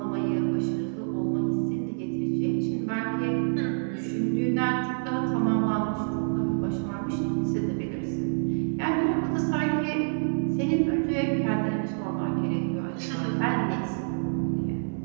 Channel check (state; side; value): silent; left; 60 dB below the other